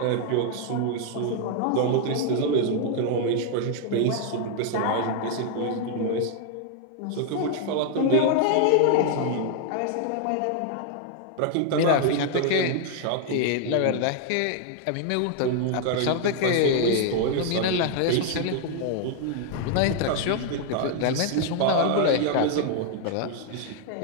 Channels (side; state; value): both; different; correlation 0.00